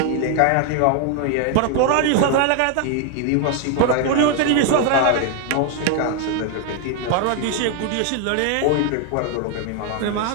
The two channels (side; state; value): both; different; correlation 0.01